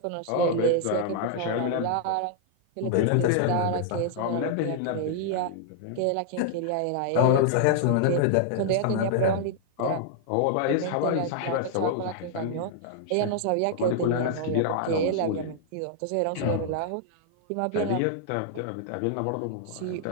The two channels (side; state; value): both; different; correlation -0.01